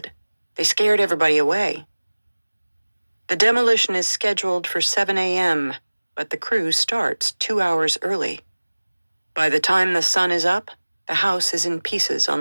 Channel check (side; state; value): both; inverted; correlation -1.00